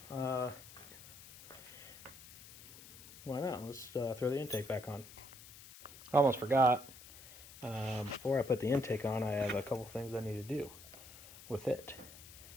why not? Let's throw the intake back on. I almost forgot. Before I put the intake on, I have a couple things I need to do with it.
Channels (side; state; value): left; noise; hiss, 17 dB below the sound